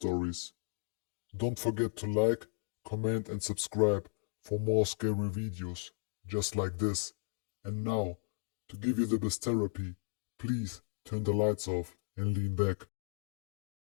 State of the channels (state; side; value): silent; right; 54 dB below the other